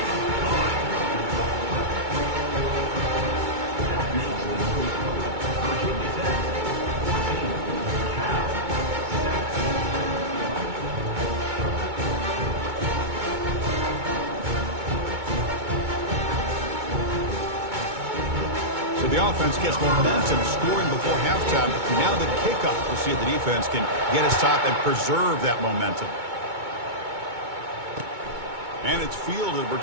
So the offense gets momentum scoring before halftime. Now the kickoff. We'll see if the defense can get his top and preserve that momentum. And it's fielded.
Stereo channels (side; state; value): left; late; 2.2 ms